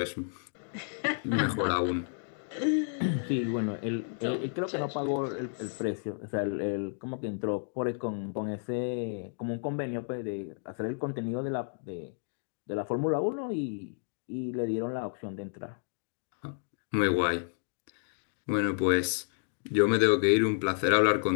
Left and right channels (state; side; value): silent; right; digital silence